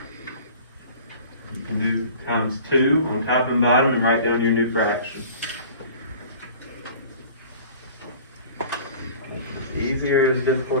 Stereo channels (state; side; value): inverted; both; correlation -0.44